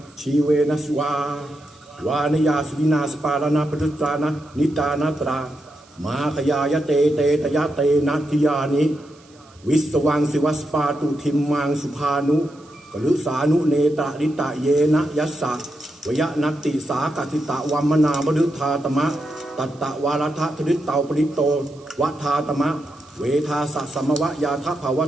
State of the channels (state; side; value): noise; right; hiss, 29 dB below the sound